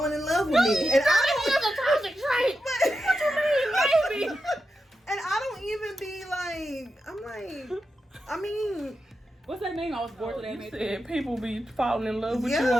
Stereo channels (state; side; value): normal; both; correlation 0.89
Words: in love with me, and I don't have a toxic trait. What you mean, baby? And I don't even be like, I mean. What's that name? I was bored today. You said people be falling in love with you